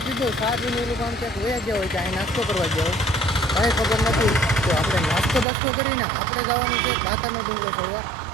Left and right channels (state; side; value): drops out; left; at 5.5 s